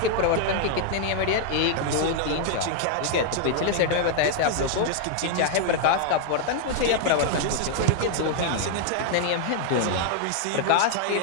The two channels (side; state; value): both; different; correlation 0.00